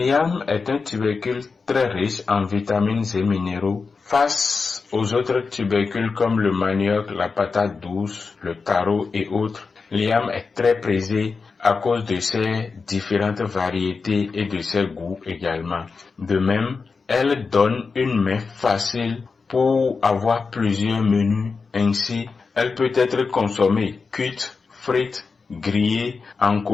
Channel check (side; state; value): right; quieter; 4.7 dB